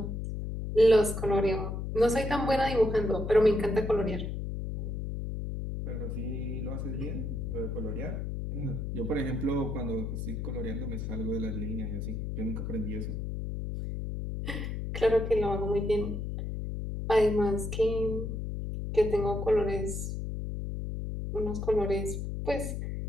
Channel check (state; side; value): noise; left; hum, 4 dB below the sound